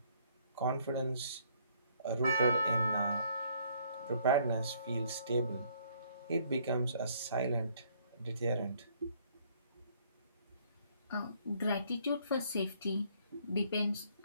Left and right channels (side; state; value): both; inverted; correlation -0.64